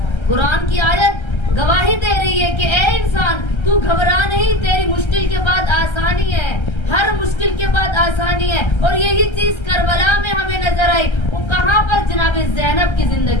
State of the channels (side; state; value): right; late; 1.3 ms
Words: قرآن کی آیت گواہی دے رہی ہے کہ اے انسان, تو گھبرا نہیں, تیری مشکل کے بعد آسانی ہے, ہر مشکل کے بعد آسانی ہے. اور یہی چیز کربلا میں ہمیں نظر آئی. وہ کہاں پر؟ جناب زینب کی